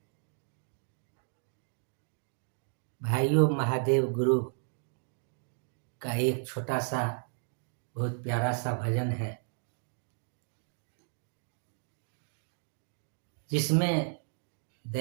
भाइयों, महादेव गुरु का एक छोटा सा बहुत प्यारा सा भजन है जिसमें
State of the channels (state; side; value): silent; left; digital silence